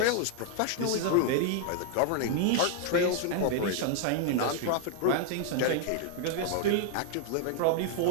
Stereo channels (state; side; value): different; both; correlation 0.00